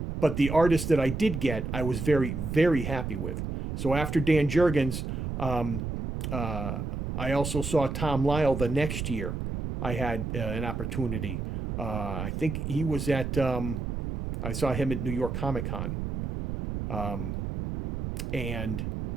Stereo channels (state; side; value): noise; right; rumble, 4 dB below the sound